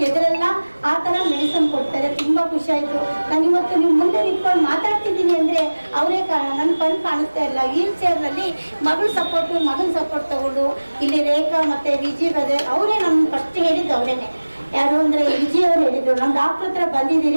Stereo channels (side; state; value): both; inverted; correlation -1.00